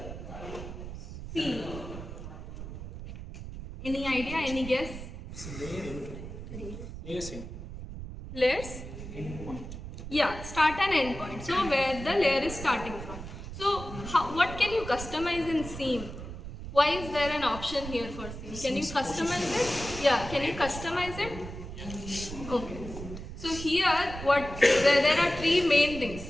Seam. Any idea? Any guess? Layers? Yeah, start and end point. So where the layer is starting from. So what can you customize in seam? Why is there an option here for seam? Can you customize it? Yeah, can you customize it? Okay. So here there are three main things:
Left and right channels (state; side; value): noise; right; rumble, 10 dB below the sound